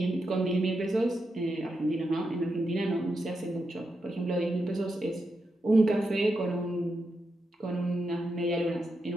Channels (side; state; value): both; normal; correlation 0.86